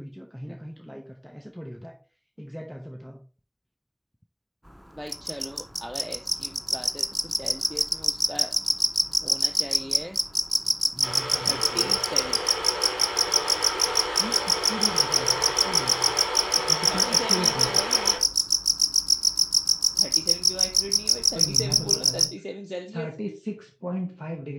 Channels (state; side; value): identical; both; correlation 1.00